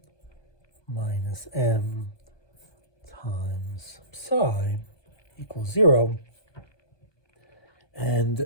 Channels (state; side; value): late; right; 1.2 ms